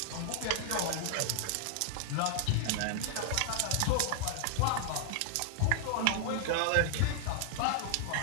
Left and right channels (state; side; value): different; both; correlation -0.01